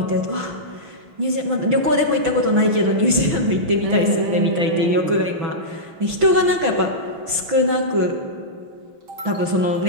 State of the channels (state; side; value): late; left; 6.1 ms